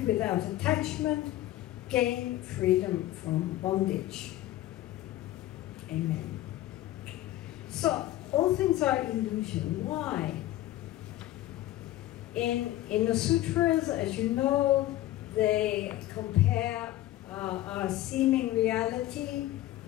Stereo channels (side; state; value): right; quieter; 15.0 dB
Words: without attachment, gain freedom from bondage." Amen. So, all things are illusion. Why? In the sutras, as you know, they compare our seeming reality